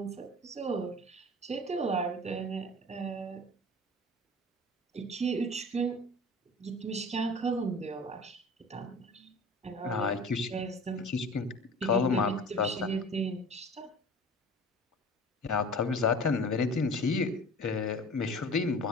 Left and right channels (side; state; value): both; normal; correlation 0.40